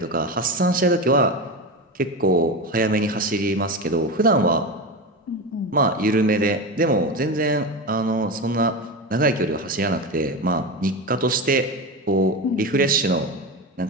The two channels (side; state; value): both; normal; correlation 0.21